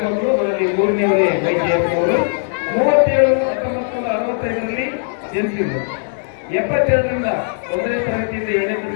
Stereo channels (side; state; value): right; silent; digital silence